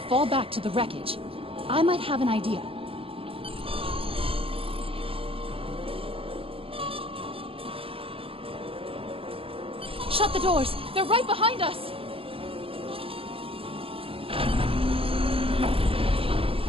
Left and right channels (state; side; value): late; left; 0.27 ms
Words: fall back to the wreckage. I might have an idea. Shut the doors! They're right behind us!